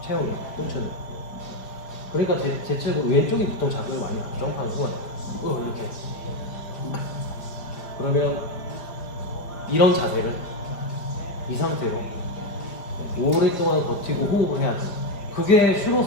체형이 똥차는. 그러니까 대체로 왼쪽이 보통 자극을 많이 점프하는 거예요. 이렇게. 그러면 이런 자세를 이 상태로 오랫동안 버티고 호흡을 해야죠. 그게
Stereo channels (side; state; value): right; late; 4.9 ms